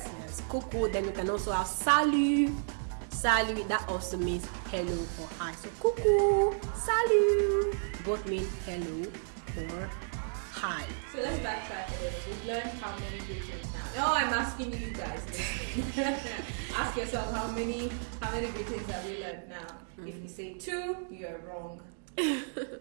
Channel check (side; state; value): left; silent; digital silence